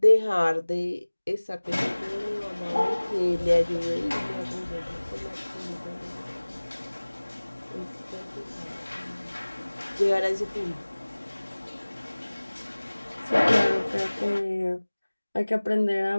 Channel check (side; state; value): both; inverted; correlation -1.00